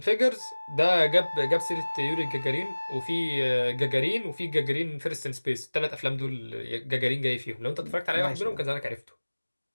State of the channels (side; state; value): both; inverted; correlation -1.00